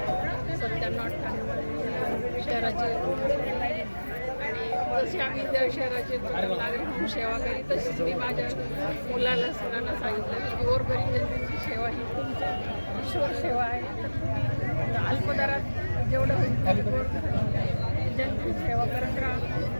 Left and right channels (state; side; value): inverted; both; correlation -1.00